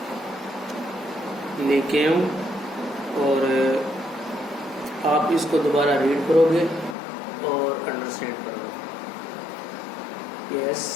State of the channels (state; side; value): drops out; right; at 7.0 s